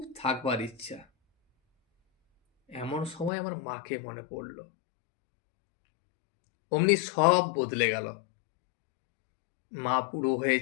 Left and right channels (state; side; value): drops out; right; at 3.3 s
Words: থাকবার ইচ্ছা। এমন সময় আমার মাকে মনে পড়ল। অমনি সব বদলে গেল। মা বুড়ো